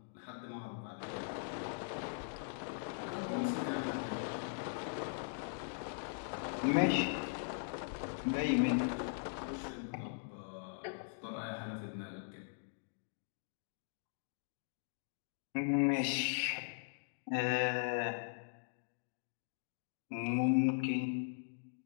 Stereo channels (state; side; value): silent; right; digital silence